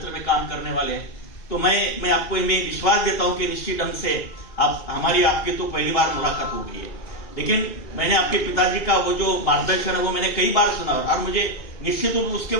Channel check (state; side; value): late; right; 2.9 ms